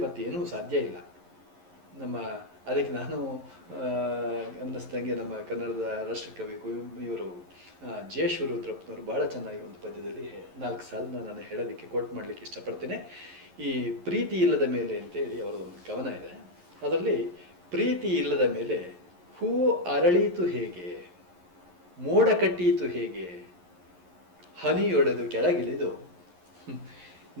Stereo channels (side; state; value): left; late; 11 ms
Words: ಮತ್ತೇನೂ ಸಾಧ್ಯ ಇಲ್ಲ. ಅದಕ್ಕೆ ನಾನು ಅನ್ನಿಸ್ದಂಗೆ ನಮ್ಮ ಕನ್ನಡದ ರಾಷ್ಟ್ರಕವಿ ಇವರು ಜೆ ಶಿವರುದ್ರಪ್ಪನವರು ಭಾಳ ಚೆನ್ನಾಗಿ ಒಂದು ಪದ್ಯದಲ್ಲಿ 4 ಸಾಲನ್ನ ನಾನು ಹೇಳೋದಕ್ಕೆ ಕೋಟ್ ಮಾಡಲಿಕ್ಕೆ ಇಷ್ಟಪಡ್ತೇನೆ. ಈ ಪ್ರೀತಿ ಇಲ್ಲದ ಮೇಲೆ ಅಂತೇಳಿ ಅವರದೊಂದು ಕವನ ಇದೆ. ಅದರಲ್ಲಿ ಪ್ರೀತಿ ಇಲ್ಲದ ಮೇಲೆ ಹೂ ಅರಳೀತು ಹೇಗೆ, ಮೋಡ ಕಟ್ಟೀತು ಹೇಗೆ, ಹನಿಯೊಡೆದು ಕೆಳಗಿಳಿದು